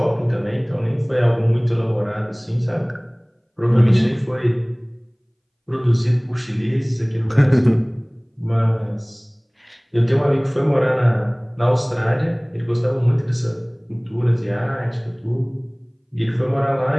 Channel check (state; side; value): identical; both; correlation 1.00